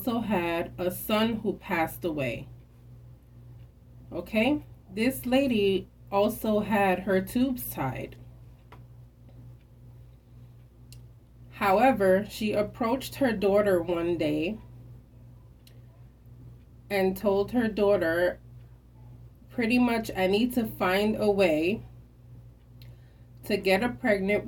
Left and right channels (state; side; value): identical; both; correlation 1.00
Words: had a son who passed away. Okay? This lady also had her tubes tied. However, she approached her daughter one day and told her daughter, pretty much, I need to find a way to get a pregnant